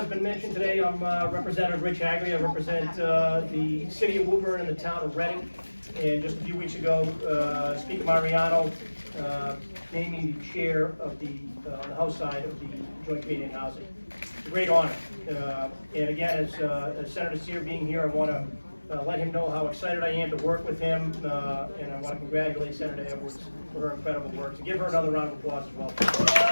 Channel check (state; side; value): inverted; both; correlation -1.00